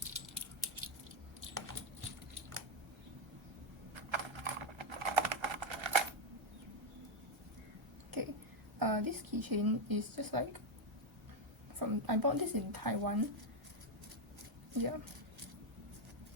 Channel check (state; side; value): normal; both; correlation 0.04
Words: Okay, this keychain is just like I bought this in Taiwan. Yeah.